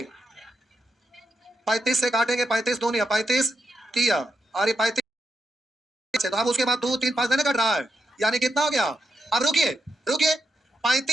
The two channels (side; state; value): both; normal; correlation 0.85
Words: 35 से काटेंगे, 35 दूनी 35 किया, और ये 35 है, तो अब उसके बाद 2 3 5 नहीं कट रहा है, यानी कितना हो गया। अब रुकिए रुकिए,